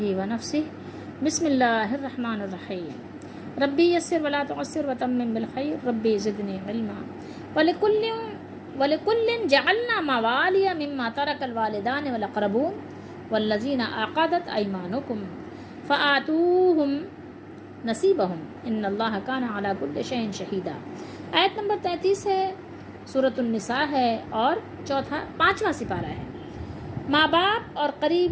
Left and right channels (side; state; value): both; identical; correlation 1.00